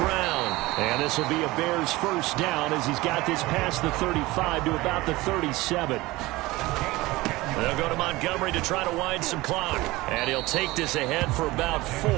And this will be a Bears first down as he's got this past the 35 to about the 37. They'll go to Montgomery to try to wind some clock. And he'll take this ahead for about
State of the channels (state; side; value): quieter; left; 20.2 dB